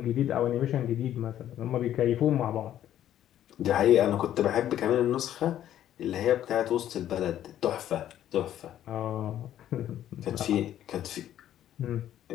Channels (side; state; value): right; quieter; 11.6 dB